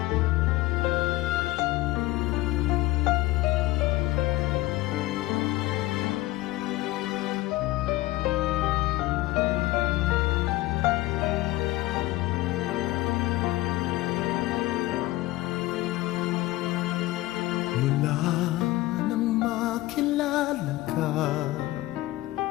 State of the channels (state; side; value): quieter; right; 18.4 dB